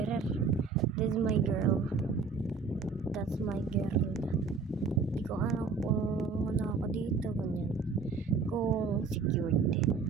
This is my girl. That's my girl. Hindi ko alam kung ano ako dito. Ganyan. Kung secured.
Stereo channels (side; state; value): left; quieter; 4.9 dB